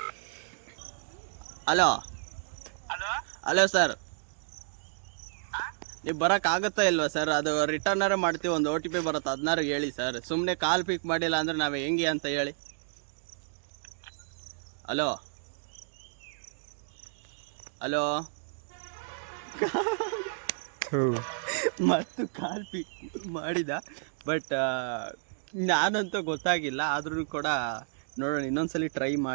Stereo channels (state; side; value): silent; left; digital silence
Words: ಹಲೋ ಸರ್, ನೀವು ಬರೋಕ್ಕಾಗುತ್ತಾ ಇಲ್ವಾ ಸರ್? ಅದು ರಿಟರ್ನರೇ ಮಾಡ್ತೀವಿ. ಒಂದು OTP ಬರುತ್ತೆ, 16 ಹೇಳಿ ಸರ್. ಸುಮ್ಮನೆ ಕಾಲ್ ಪಿಕ್ ಮಾಡಿಲ್ಲ ಅಂದರೆ ನಾವು ಹೆಂಗೆ ಅಂತ ಹೇಳಿ. ಹಲೋ ಮತ್ತು ಕಾಲ್ ಪಿಕ್ ಮಾಡಿದ, ಬಟ್ ನಾನಂತೂ ಗೊತ್ತಾಗಿಲ್ಲ. ಆದ್ರೂ ಕೂಡ ನೋಡೋಣ, ಇನ್ನೊಂದ್ಸಲಿ ಟ್ರೈ